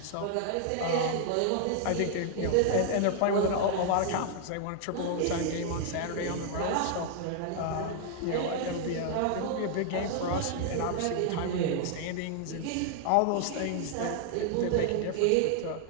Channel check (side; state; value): both; different; correlation -0.01